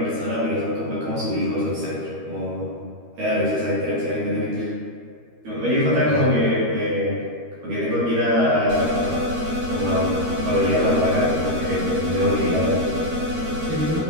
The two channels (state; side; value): late; left; 13 ms